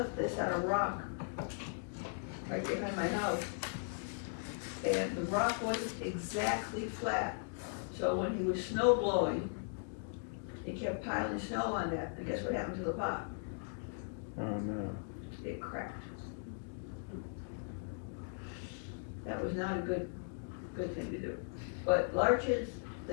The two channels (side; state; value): right; silent; digital silence